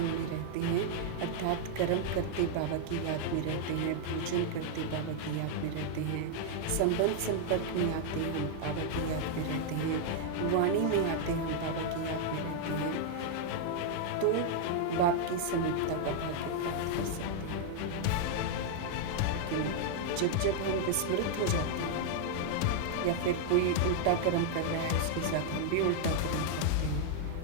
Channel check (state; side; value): different; both; correlation 0.00